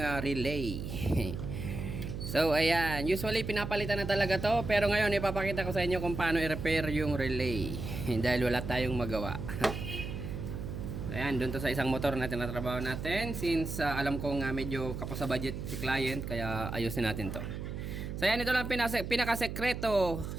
relay. So ayan, usually pinapalitan na talaga to. Pero ngayon ipapakita ko sa inyo kung paano i-repair yung relay. Dahil wala tayong magawa. Ayan, doon to sa isang motor na tinatrabaho natin. Since alam kong medyo kapos sa budget si client, kaya ayusin natin to. So ayan, ito lang pinakasekreto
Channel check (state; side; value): noise; right; hum, 6 dB below the sound